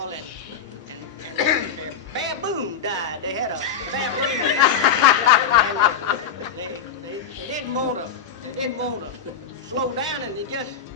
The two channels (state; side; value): quieter; right; 6.9 dB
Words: and their baboon died. They had a baboon, and they didn't want to slow down, and they just